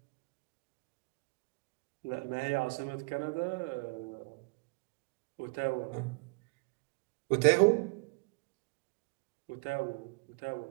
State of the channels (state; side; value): quieter; left; 31.4 dB